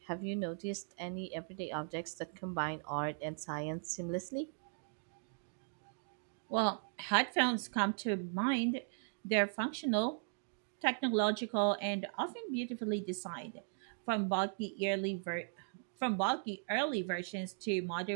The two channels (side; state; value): left; silent; digital silence